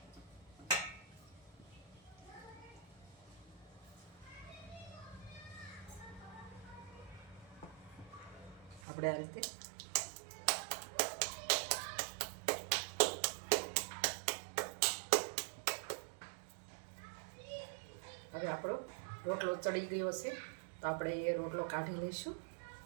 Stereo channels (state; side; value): drops out; left; at 8.8 s